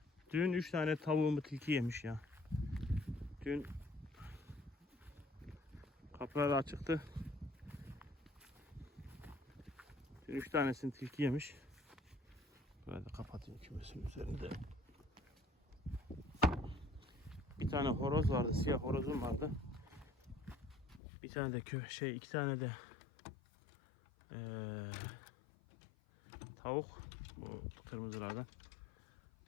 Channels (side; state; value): right; drops out; at 21.0 s